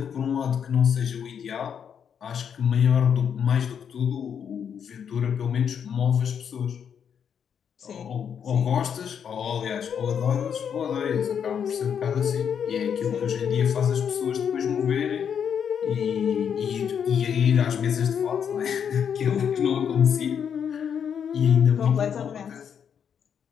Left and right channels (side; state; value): right; quieter; 7.8 dB